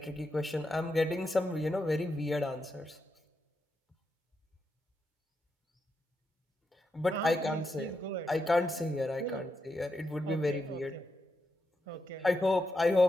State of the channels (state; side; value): normal; both; correlation 0.84